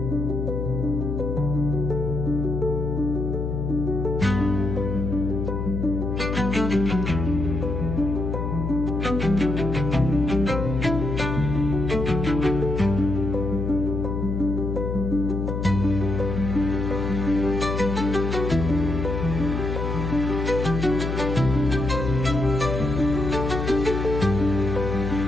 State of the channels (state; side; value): noise; left; hum, 2 dB below the sound